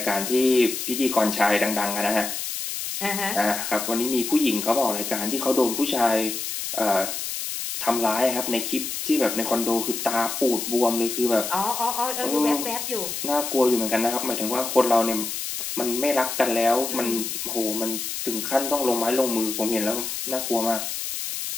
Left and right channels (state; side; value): noise; left; hiss, 4 dB below the sound